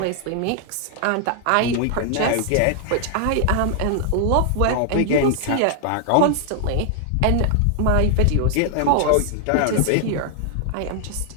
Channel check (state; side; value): different; both; correlation 0.00